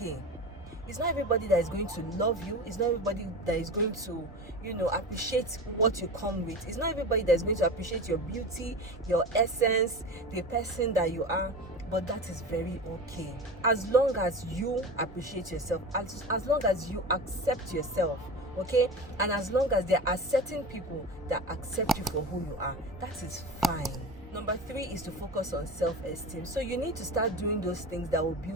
It's not everybody that is going to love you. It's not everybody that is going to, appreciate what you come with. It's not everybody that is going to appreciate your beauty, your essence, the person that you are. But that is very okay. As long as you appreciate yourself, as long as you accept yourself, okay? And as long as there are certain people that accept you for who you are, that is fine. Number 3 is to focus on self-esteem. So you need to start doing those things that will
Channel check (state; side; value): normal; both; correlation 0.29